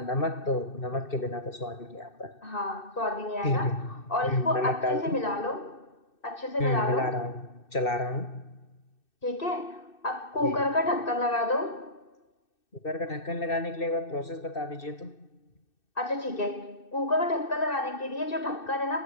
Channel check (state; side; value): late; right; 2.6 ms